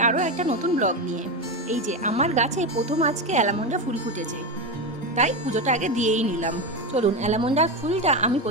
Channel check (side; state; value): both; normal; correlation 0.15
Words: আরও একটা নতুন ব্লগ নিয়ে। এই যে আমার গাছে প্রথম আজকে অ্যালামন্ডা ফুল ফুটেছে, তাই পুজোটা আগে দিয়েই নিলাম। চলুন, অ্যালামন্ডার ফুলটা আমি